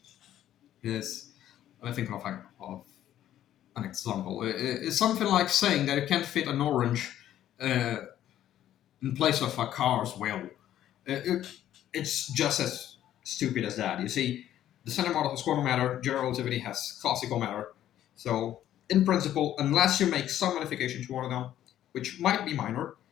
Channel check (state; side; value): quieter; right; 11.9 dB